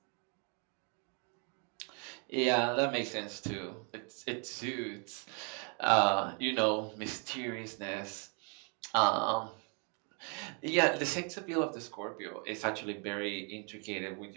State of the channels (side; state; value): left; quieter; 36.8 dB